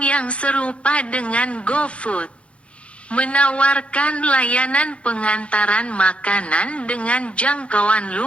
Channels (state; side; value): late; right; 0.061 ms